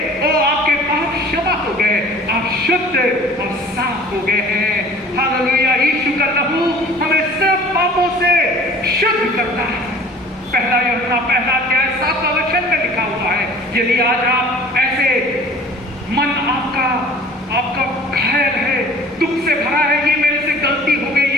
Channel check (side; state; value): both; normal; correlation 0.46